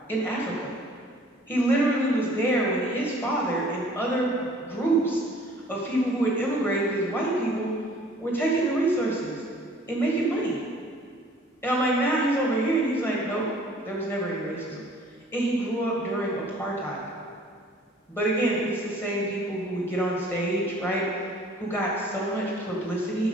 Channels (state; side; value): normal; both; correlation 0.53